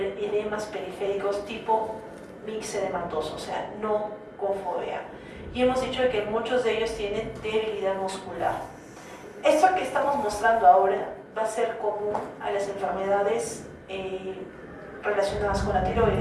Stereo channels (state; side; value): identical; both; correlation 1.00